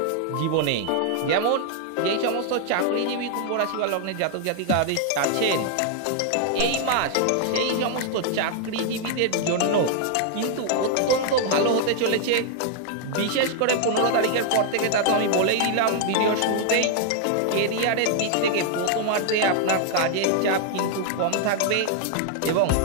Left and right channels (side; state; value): both; different; correlation 0.00